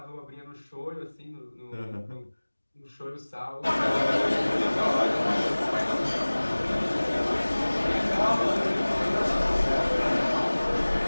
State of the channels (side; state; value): both; inverted; correlation -1.00